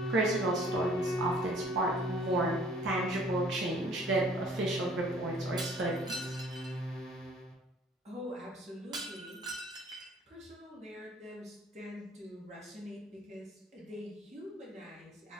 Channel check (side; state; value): both; normal; correlation 0.55